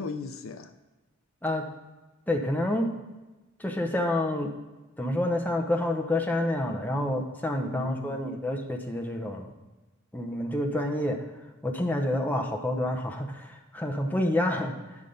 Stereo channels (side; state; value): both; normal; correlation 0.74